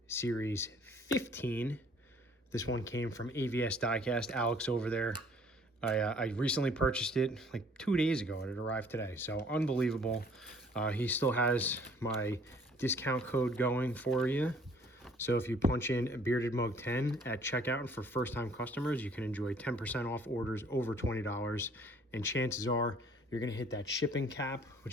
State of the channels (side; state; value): both; normal; correlation 0.58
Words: series 15. This one came from AVS Diecast, Alex over there. I recently purchased it like 2 days ago and it arrived today, so unbelievable. He still has my discount code going for you. So if you punch in Bearded Mug 10 at checkout, and for first-time customers, you can enjoy 10% off orders over $20. And chances are you're going to hit that shipping cap,